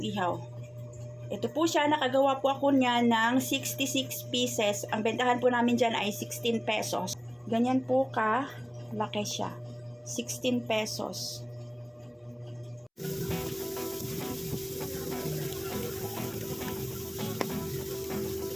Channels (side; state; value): both; identical; correlation 1.00